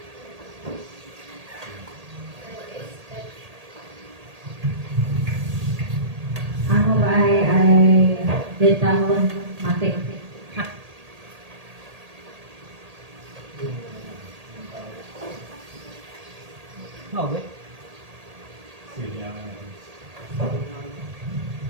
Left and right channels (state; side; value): late; left; 1.8 ms